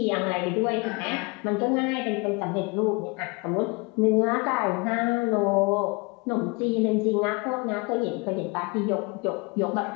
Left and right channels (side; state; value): right; quieter; 28.3 dB